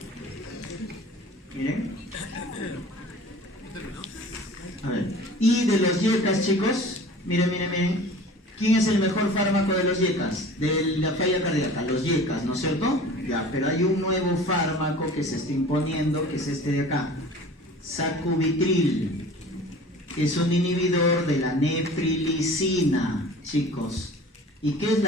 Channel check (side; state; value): both; normal; correlation 0.42